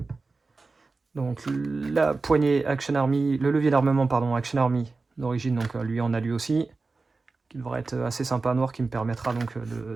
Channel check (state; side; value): quieter; left; 3.9 dB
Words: donc la poignée Action Army, le levier d'armement pardon Action Army d'origine, donc lui en a lui aussi, qui devrait être assez sympa noir, qui me permettra donc